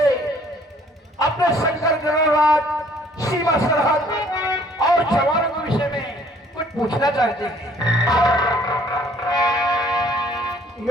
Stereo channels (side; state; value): both; normal; correlation 0.59